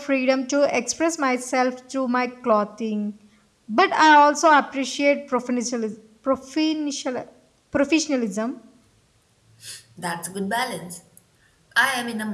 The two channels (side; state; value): both; identical; correlation 1.00